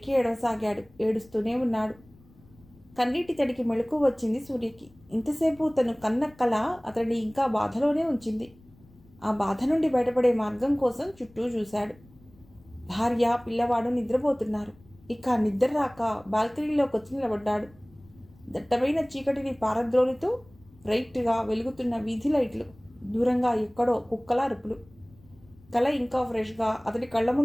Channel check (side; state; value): left; noise; rumble, 27 dB below the sound